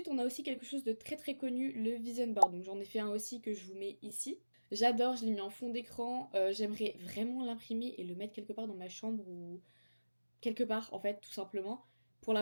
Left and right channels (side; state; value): both; inverted; correlation -1.00